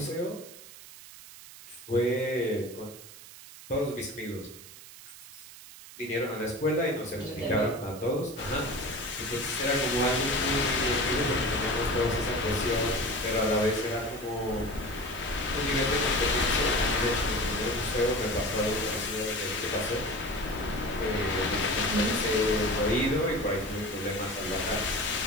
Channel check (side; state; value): right; noise; hiss, 17 dB below the sound